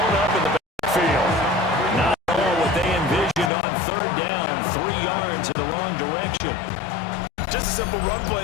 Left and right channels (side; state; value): right; drops out; at 3.5 s